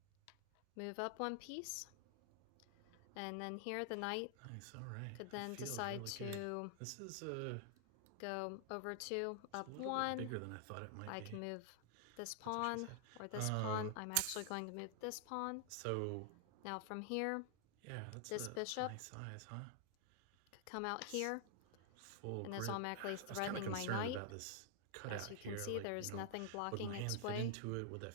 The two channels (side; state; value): both; different; correlation 0.00